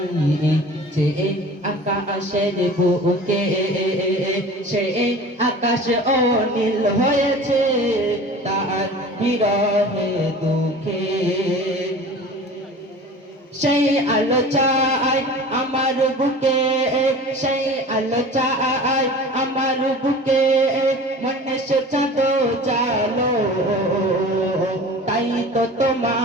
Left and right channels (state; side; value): normal; both; correlation 0.40